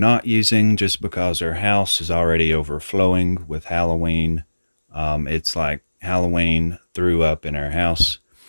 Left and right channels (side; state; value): both; inverted; correlation -1.00